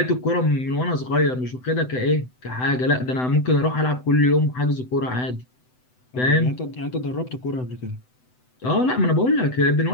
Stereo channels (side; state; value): right; late; 7.9 ms